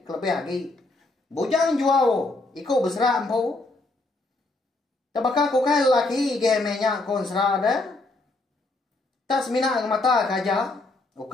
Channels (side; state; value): right; quieter; 3.1 dB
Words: kelebih lagi. Bujang jual iko besara empu. Tabaka ko kai laki gemenya kon sera dah. Tas mina ke mata kaja.